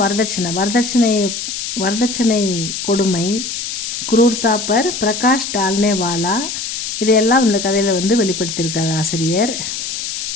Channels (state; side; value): noise; left; hiss, 5 dB below the sound